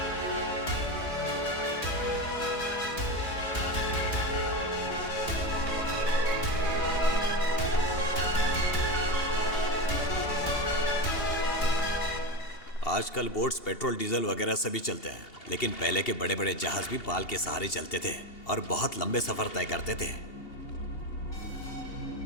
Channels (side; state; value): right; late; 2.8 ms